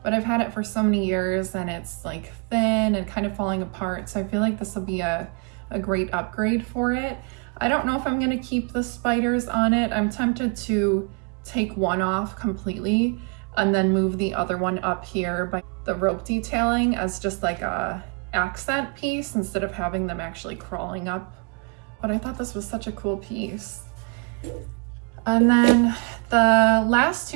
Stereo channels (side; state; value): left; quieter; 35.9 dB